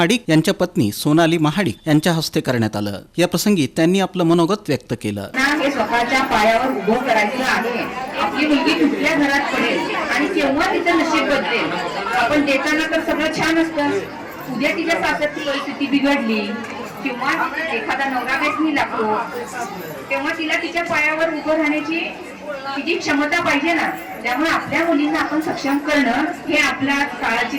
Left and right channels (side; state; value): both; identical; correlation 1.00